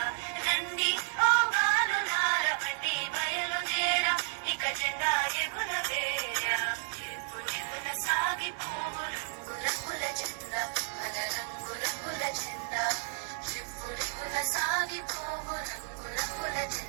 రండి ఓ బాలులార బండి బయలుదేరా ఇక జెండా ఎగురవేరా రివ్వురివ్వున సాగిపోవు రంగు రంగుల జెండా మన రంగు రంగుల జెండా రివ్వురివ్వున సాగిపోవు రంగు రంగుల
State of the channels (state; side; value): silent; left; digital silence